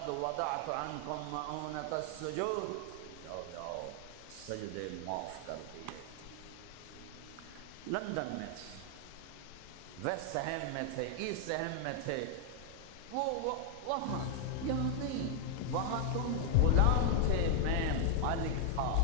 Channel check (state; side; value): different; both; correlation 0.00